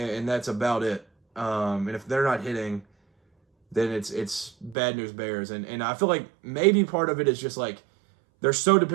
that's about it. And if they're not hitting, then it's bad news bears. And I feel like maybe part of it is just like they're so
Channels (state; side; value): drops out; left; at 4.8 s